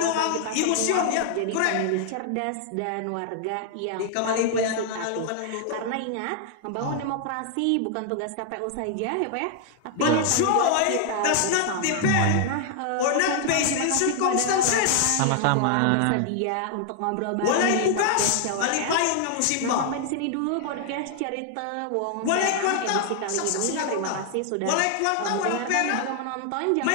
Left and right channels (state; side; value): different; both; correlation 0.00